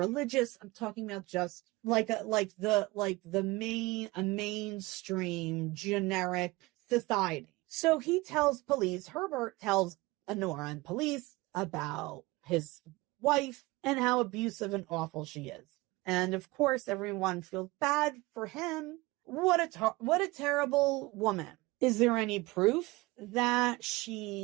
I'm talking about just a mainstream generic society. So he tells police, Herbert tells Honorah and police about his wife and how abusive and awful she is. And of course, everyone feels bad for him. What a terrible woman. Is there any proof that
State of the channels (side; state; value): left; quieter; 21.9 dB